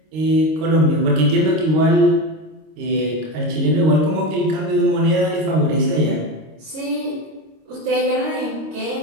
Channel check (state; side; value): late; left; 26 ms